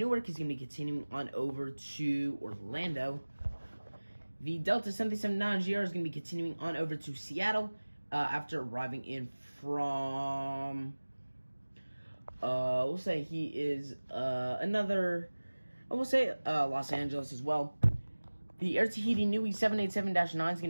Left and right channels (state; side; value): inverted; both; correlation -1.00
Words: He's going to be continuing on over to Orlando. The Delta 737-9GR is going to be continuing on over to Seattle after arriving in from, we'll say he is Los Angeles as well. The Air Tahiti Nui 787-9 is